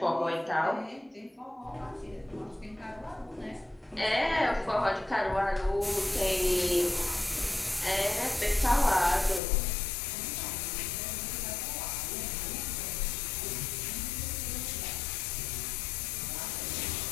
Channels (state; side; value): drops out; right; at 9.4 s